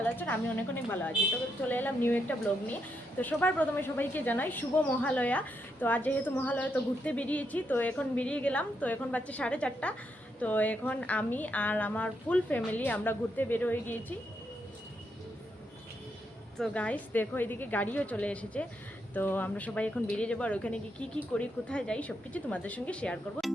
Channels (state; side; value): normal; both; correlation 0.80